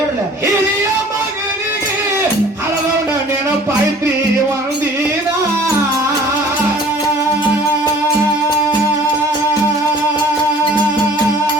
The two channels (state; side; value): normal; both; correlation 0.50